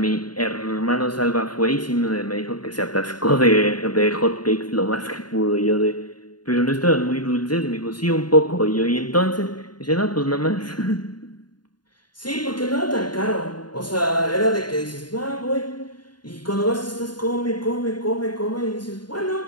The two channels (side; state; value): right; late; 0.70 ms